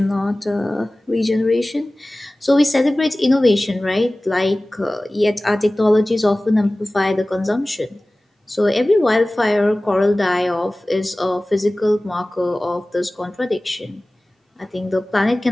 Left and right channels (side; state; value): both; normal; correlation 0.98